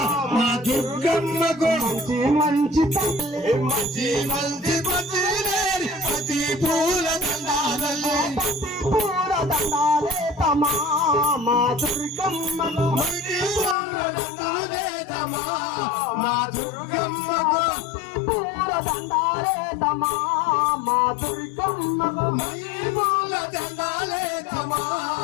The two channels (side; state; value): right; drops out; at 13.8 s